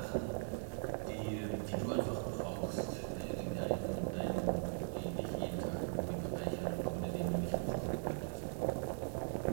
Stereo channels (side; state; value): left; silent; 51 dB below the other